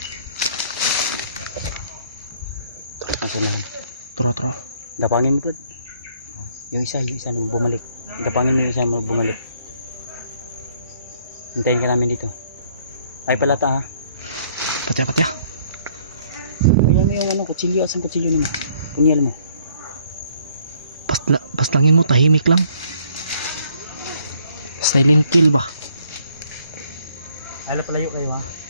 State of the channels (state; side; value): inverted; both; correlation -0.64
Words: Nasa nahan. Turo. Dapangin mo pa. Yung isa nung bumalik. Dapangin mo yung isa mo bumalik. Hintayin ka namin dito. Ay palata ha. Patya. Bigyan mo yung ano, kutsilyo. Asan kutsilyo mo? Punyal mo. Paslangin mo, tahimik lang. Silent kill ba? Ay palayo kayo ha.